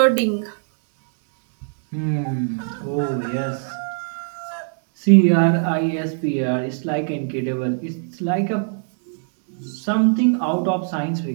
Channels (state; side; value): silent; left; digital silence